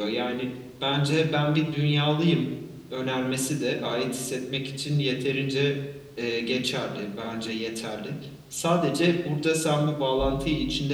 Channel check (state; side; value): identical; both; correlation 1.00